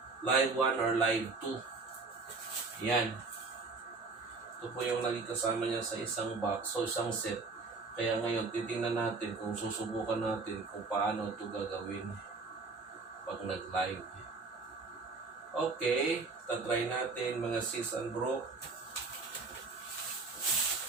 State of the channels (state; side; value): quieter; left; 4.1 dB